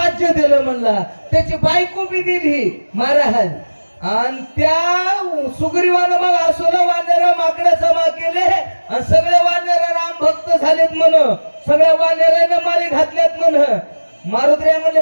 दिलं म्हणला. त्याची बायको बी दिली महाराज. आणि त्या सुग्रीवानं मग असोला वानर माकडं जमा केले आणि सगळे वानर राम भक्त झालेत म्हण. सगळ्या वानरानं माळी घातल्यात म्हण. मारुद्र्या म्हणले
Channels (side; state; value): both; inverted; correlation -1.00